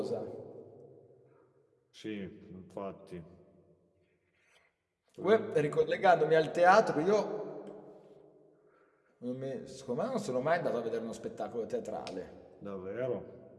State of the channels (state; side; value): identical; both; correlation 1.00